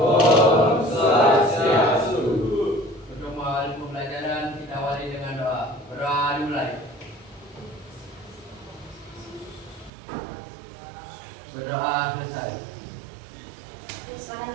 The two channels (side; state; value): left; drops out; at 9.9 s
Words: Swastiastu. Untuk mengawali pembelajaran kita awali dengan doa. Berdoa dimulai. Berdoa selesai. Silakan